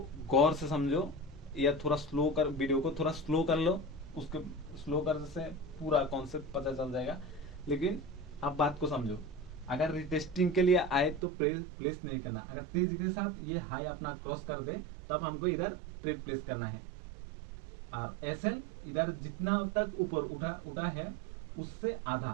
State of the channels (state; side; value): drops out; left; at 11.2 s